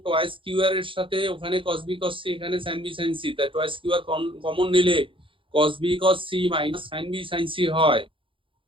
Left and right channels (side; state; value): left; late; 0.25 ms